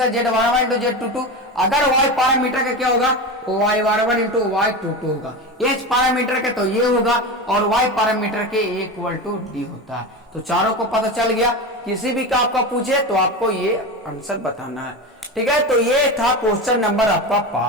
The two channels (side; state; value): both; normal; correlation 0.23